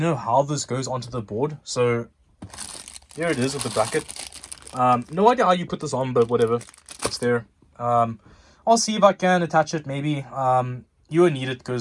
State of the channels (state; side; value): identical; both; correlation 1.00